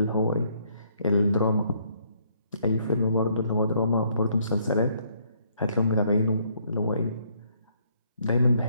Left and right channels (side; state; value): both; inverted; correlation -0.69